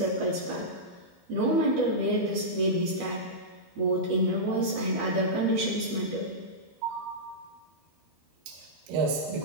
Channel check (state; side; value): late; left; 12 ms